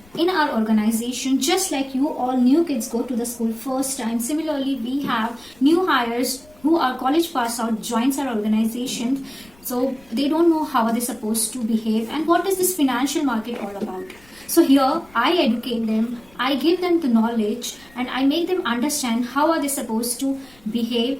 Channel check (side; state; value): left; noise; rumble, 27 dB below the sound